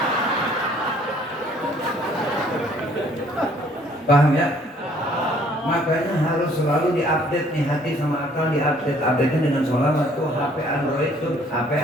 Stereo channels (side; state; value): both; normal; correlation 0.60